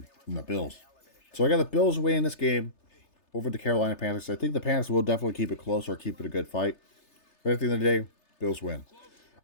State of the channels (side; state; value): right; late; 3.3 ms